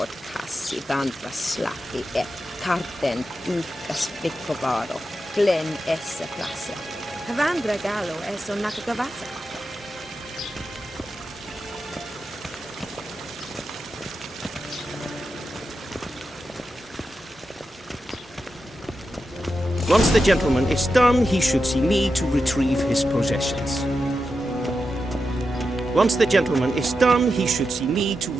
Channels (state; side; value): normal; both; correlation 0.89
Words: kassi vandra slappi et karten ykkas vikkovaro. Glen esse plasse. Vandra galo eso nakagavasa. Once the gentleman is done, he should see me to retrieve his possessions. Once the gentleman is done, he should see me to